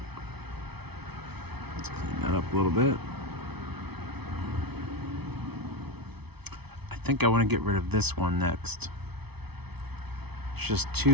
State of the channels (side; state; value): left; late; 0.98 ms